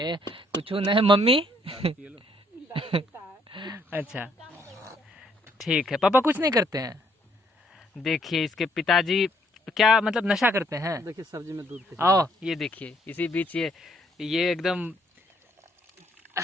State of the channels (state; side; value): normal; both; correlation 0.68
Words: कुछ नहीं। मम्मी? अच्छा ठीक है, पापा कुछ नहीं करते हैं। देखिए इसके पिताजी क्या मतलब नशा करते हैं? देखिए सब्जी में दूध। आओ ये देखिए, इसी बीच ये एकदम